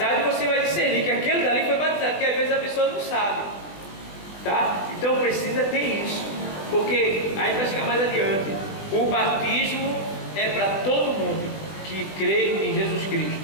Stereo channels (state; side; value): late; right; 20 ms